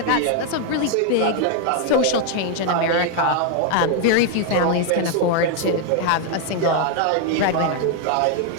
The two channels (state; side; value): different; both; correlation 0.00